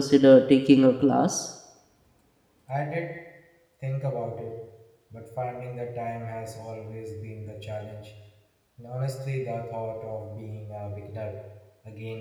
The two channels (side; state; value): both; identical; correlation 1.00